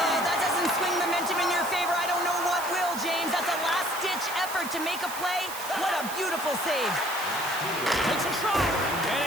Oh, that doesn't swing momentum in your favor. I don't know what will, James. That's a last-ditch effort to make a play. What a beautiful save. Takes a shot.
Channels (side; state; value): right; noise; hiss, 10 dB below the sound